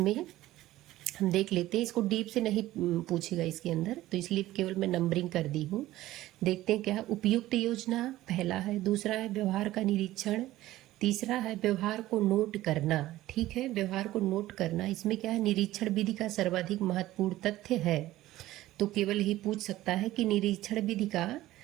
हम देख लेते हैं, इसको डीप से नहीं पूछेगा इसके अंदर, तो इसलिए केवल मैं नंबरिंग कर दी हूँ। देखते हैं क्या। उपयुक्त योजना पहला है, दूसरा है व्यवहार का निरीक्षण, तीसरा है व्यवहार को नोट करना। ठीक है, व्यवहार को नोट करना, इसमें क्या है? निरीक्षण विधि का सर्वाधिक महत्वपूर्ण तथ्य है, तो केवल ही पूछ सकता है कि निरीक्षण विधि का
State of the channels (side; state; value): left; quieter; 15.8 dB